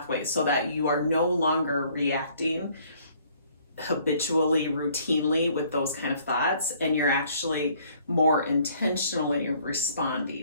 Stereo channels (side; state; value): both; inverted; correlation -0.60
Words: so that you are no longer reacting habitually, routinely with those kind of thoughts, and you're actually more intentionally